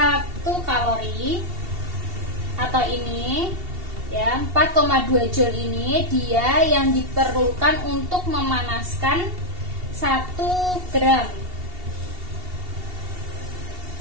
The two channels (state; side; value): late; left; 2.7 ms